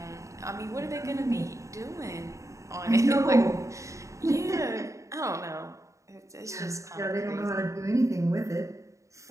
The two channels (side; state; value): left; late; 0.15 ms